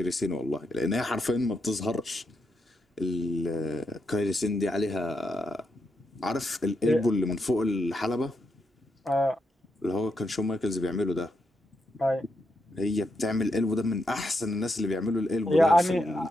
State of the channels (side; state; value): both; normal; correlation 0.82